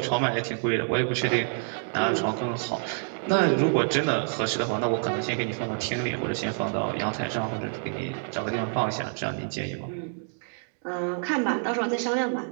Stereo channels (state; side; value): silent; left; 60 dB below the other